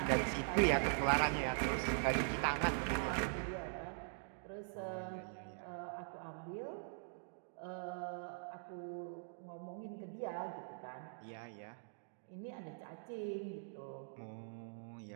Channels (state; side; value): silent; left; digital silence